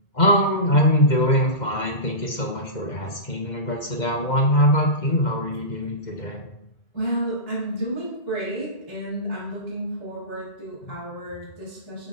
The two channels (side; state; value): right; late; 2.1 ms